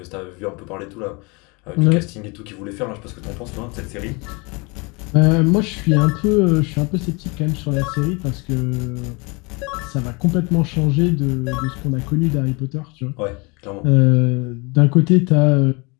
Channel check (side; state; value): right; quieter; 28.5 dB